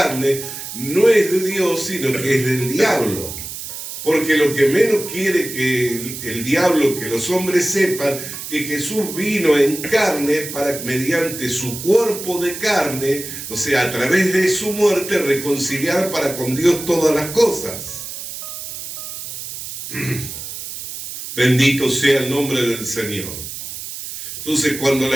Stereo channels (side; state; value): right; noise; hiss, 9 dB below the sound